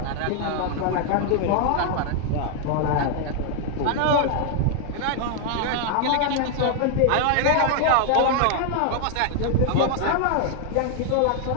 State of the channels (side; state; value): both; different; correlation 0.00